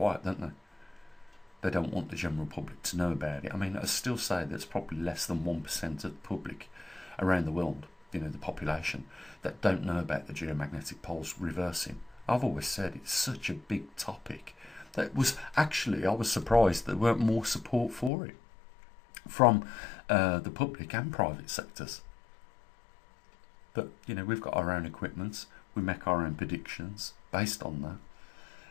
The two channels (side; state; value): right; drops out; at 18.1 s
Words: don't they? They don't want the general public to know about it. I mean, I still say there's probably less than 1% of the public around the world, the population, that don't know about the geomagnetic poles reversing. I've always said it's such a big topic that was actually, I was surprised there weren't more support for it from the public and private sectors. But we've got our own equipment, we make our own predictions based on that,